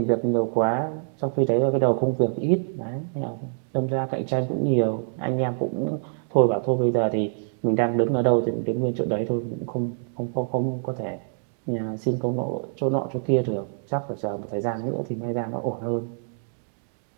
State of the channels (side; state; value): left; silent; digital silence